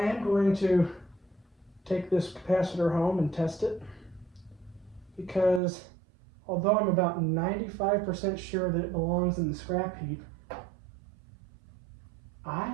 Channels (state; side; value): drops out; left; at 5.6 s